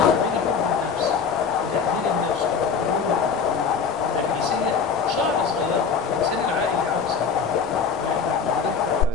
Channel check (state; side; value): quieter; right; 6.0 dB